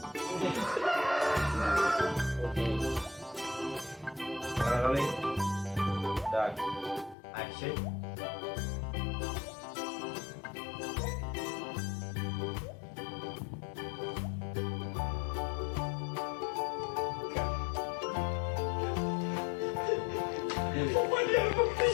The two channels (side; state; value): right; drops out; at 7.2 s